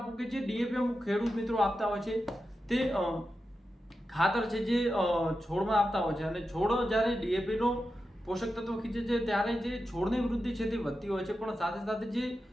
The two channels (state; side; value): normal; both; correlation 0.90